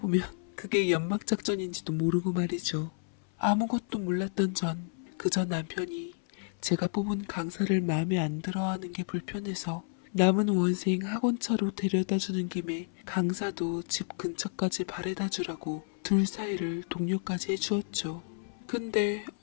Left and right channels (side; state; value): right; silent; 57 dB below the other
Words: 그게 연막작전인지도 모르고 말이죠. 아무것도 몰랐던 전 그저 남편이 제가 뽑은 강사를 마음에 안 들어하는 게 불편해서 남은 원생 학원차로 데려다주는 김에 강사도 집 근처까지 바래다주라고 둘 사이를 동료까지 해주었죠. 근데